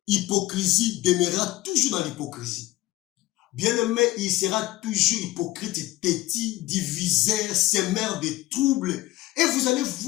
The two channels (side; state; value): right; quieter; 17.6 dB